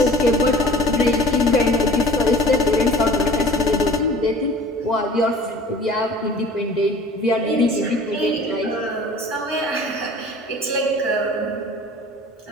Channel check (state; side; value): normal; both; correlation 0.45